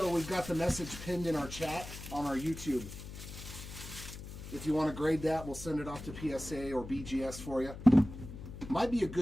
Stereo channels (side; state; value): left; noise; hum, 11 dB below the sound